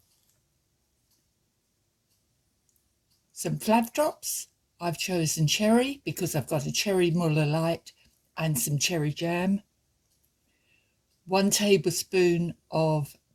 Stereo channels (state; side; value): identical; both; correlation 1.00